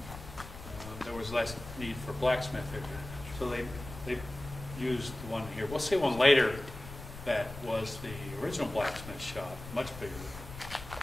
There was less need for blacksmith area, so they used the one here. We'll see one later that was the original blacksmith shop, much bigger.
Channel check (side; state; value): left; noise; rumble, 12 dB below the sound